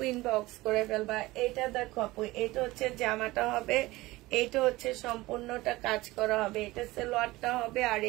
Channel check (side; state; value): left; quieter; 19.6 dB